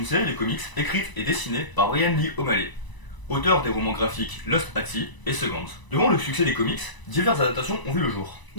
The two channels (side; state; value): right; late; 1.0 ms